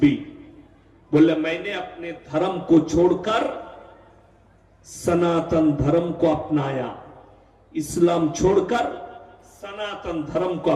बोले मैंने अपने धर्म को छोड़कर सनातन धर्म को अपनाया, इस्लाम छोड़कर सनातन धर्म को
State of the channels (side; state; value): both; identical; correlation 1.00